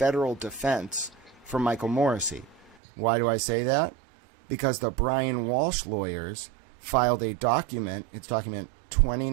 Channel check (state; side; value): drops out; left; at 2.8 s